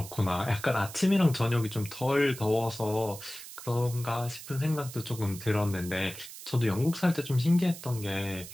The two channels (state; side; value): noise; right; hiss, 13 dB below the sound